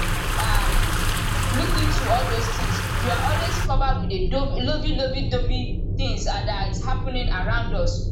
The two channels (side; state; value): both; identical; correlation 1.00